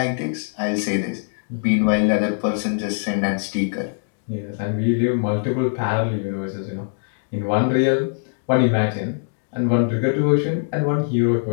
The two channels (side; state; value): right; silent; digital silence